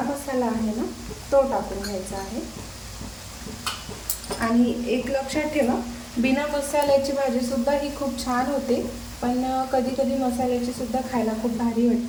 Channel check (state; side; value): identical; both; correlation 1.00